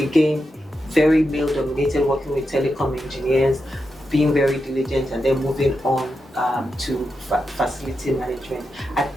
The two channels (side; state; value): both; normal; correlation 0.87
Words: very male-dominated, working with telecom engineers, being very diligent, and then moving on to facility management. At